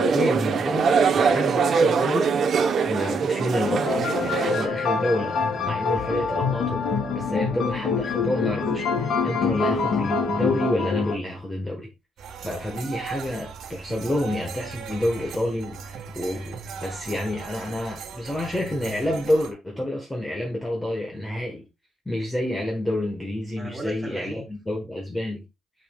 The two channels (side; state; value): both; normal; correlation 0.75